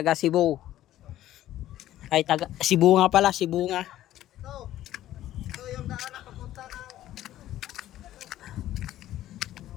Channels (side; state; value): right; quieter; 13.5 dB